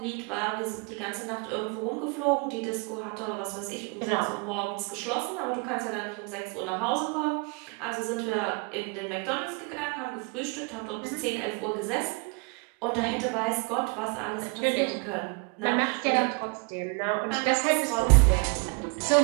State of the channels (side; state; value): left; quieter; 33.4 dB